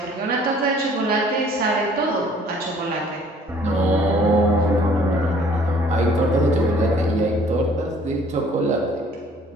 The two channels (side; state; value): both; normal; correlation 0.56